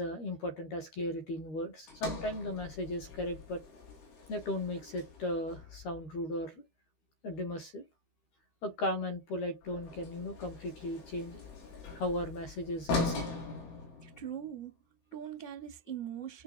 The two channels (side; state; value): right; late; 13 ms